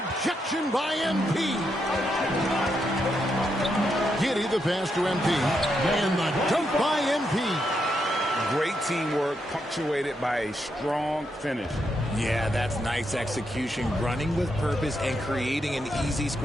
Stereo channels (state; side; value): normal; both; correlation 0.81